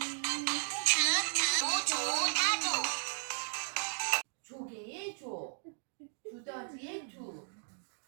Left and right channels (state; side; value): silent; left; digital silence